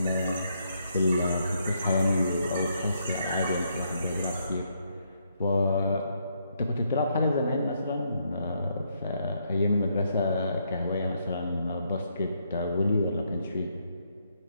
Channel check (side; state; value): both; inverted; correlation -0.75